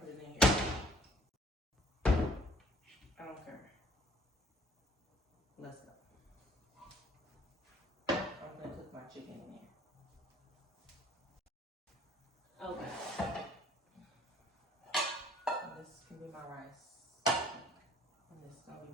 it in here. I don't care. Let's go. I'm gonna cook my chicken in here. Okay. And this can be my rice. And this is gonna be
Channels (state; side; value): normal; both; correlation 0.57